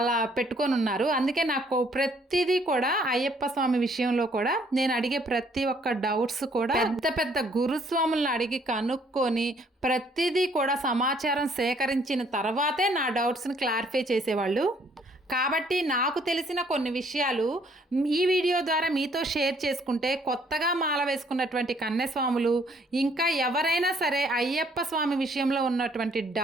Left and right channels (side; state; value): both; normal; correlation 0.64